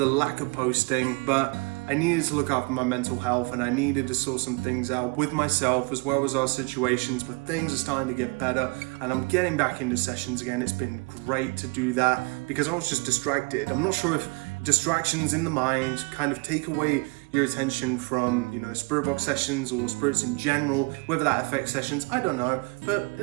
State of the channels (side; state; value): left; quieter; 28.9 dB